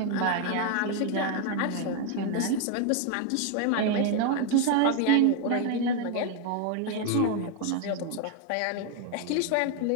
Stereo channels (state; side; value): different; both; correlation 0.01